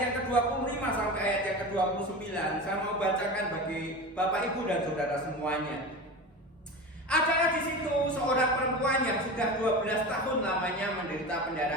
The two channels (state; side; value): normal; both; correlation 0.28